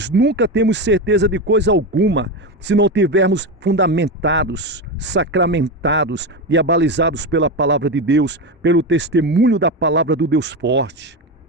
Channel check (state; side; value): normal; both; correlation 0.16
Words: nunca temos certeza de coisa alguma se não tivermos fundamentados, sacramentados e abalizados pela palavra de Deus, pelo testemunho da palavra do Deus forte.